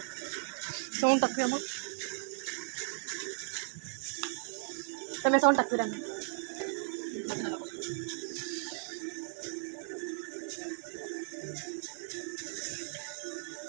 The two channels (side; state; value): left; silent; 54 dB below the other